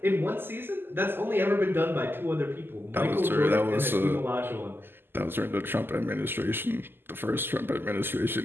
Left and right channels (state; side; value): late; left; 0.10 ms